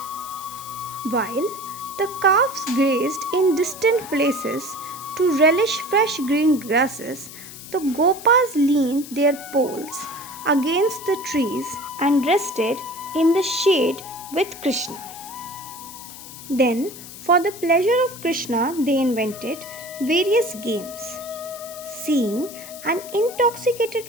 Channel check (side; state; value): left; noise; hiss, 14 dB below the sound